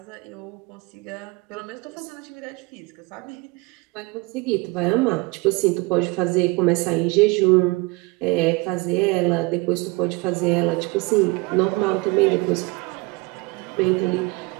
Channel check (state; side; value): quieter; left; 23.9 dB